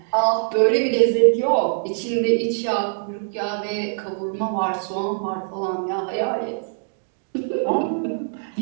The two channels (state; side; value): silent; left; digital silence